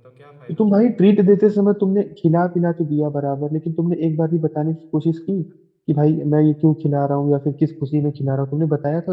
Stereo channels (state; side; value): identical; both; correlation 1.00